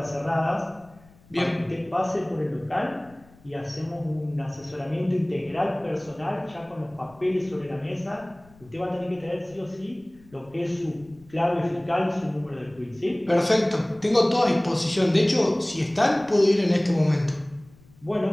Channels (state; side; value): noise; left; rumble, 26 dB below the sound